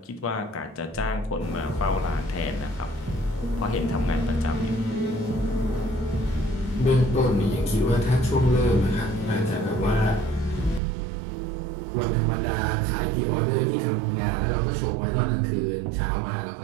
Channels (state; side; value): drops out; left; at 10.8 s